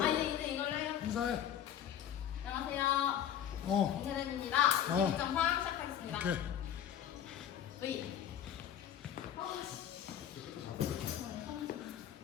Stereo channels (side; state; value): right; quieter; 10.1 dB